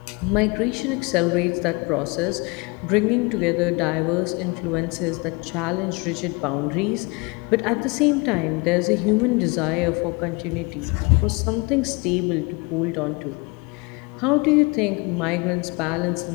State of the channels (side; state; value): right; quieter; 28.2 dB